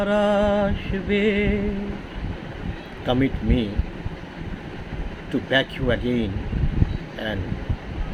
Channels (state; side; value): identical; both; correlation 1.00